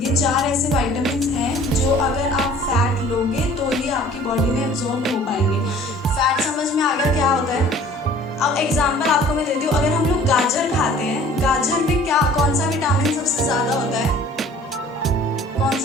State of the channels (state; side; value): normal; both; correlation 0.50